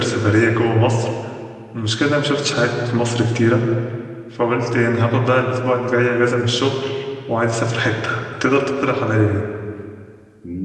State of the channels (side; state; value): both; identical; correlation 1.00